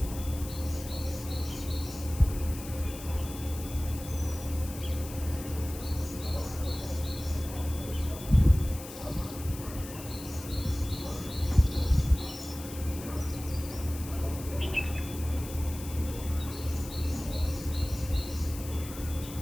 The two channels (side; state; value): left; noise; hiss, 13 dB below the sound